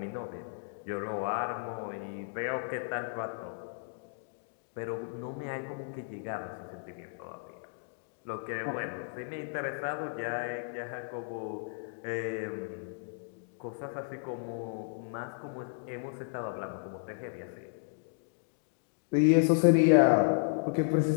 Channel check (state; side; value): silent; right; digital silence